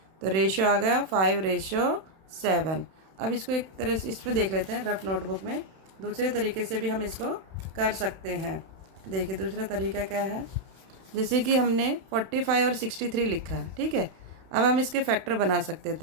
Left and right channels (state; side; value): late; left; 31 ms